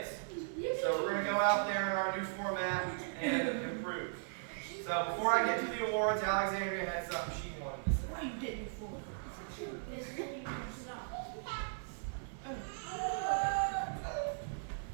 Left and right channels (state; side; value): silent; left; 53 dB below the other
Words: So we're going to go out there in our new format and improve. So before I get to the awards, Alexandria had something she wanted to say. What are you getting for?